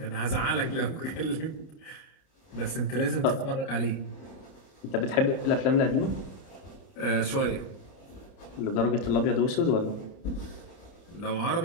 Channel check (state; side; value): late; right; 30 ms